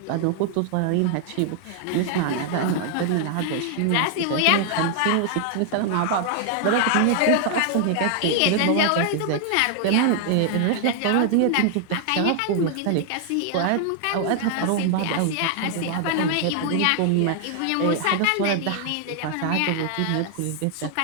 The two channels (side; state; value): both; different; correlation 0.00